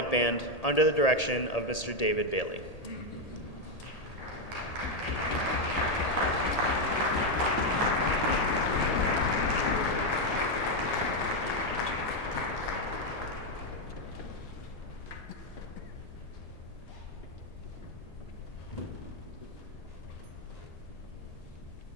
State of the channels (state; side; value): late; right; 1.8 ms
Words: Band under the direction of Mr. David Bailey.